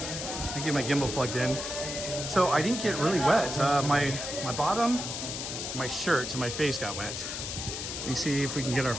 Let me get my gimbal plugged in. So I didn't get really wet. My bottom, my shirt, and my face got wet. Let me see if we can get our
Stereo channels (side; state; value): left; noise; hiss, 5 dB below the sound